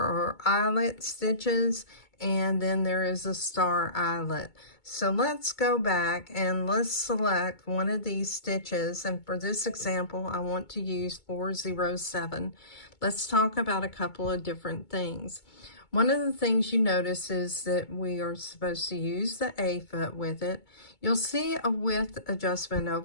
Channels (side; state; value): right; late; 2.2 ms